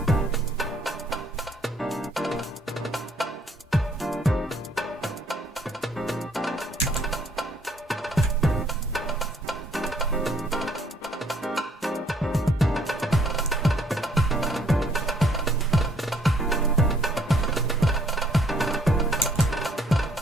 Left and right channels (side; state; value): both; normal; correlation 0.65